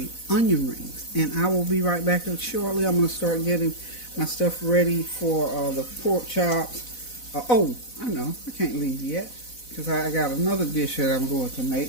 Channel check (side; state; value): right; late; 4.0 ms